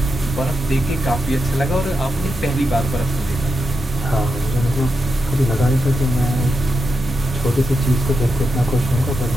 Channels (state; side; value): normal; both; correlation 0.87